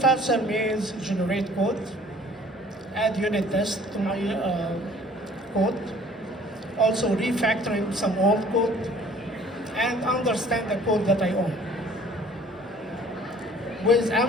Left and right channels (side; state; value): both; normal; correlation 0.53